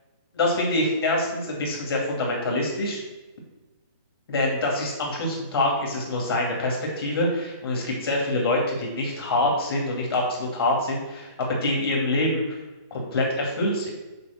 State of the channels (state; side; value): inverted; both; correlation -0.37